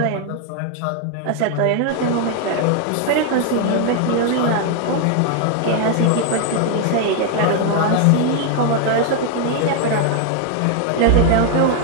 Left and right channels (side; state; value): both; different; correlation 0.00